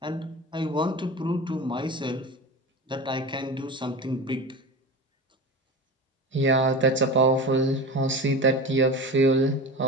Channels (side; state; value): both; normal; correlation 0.29